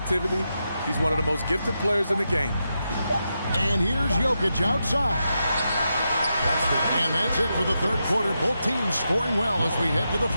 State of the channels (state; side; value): inverted; both; correlation -0.86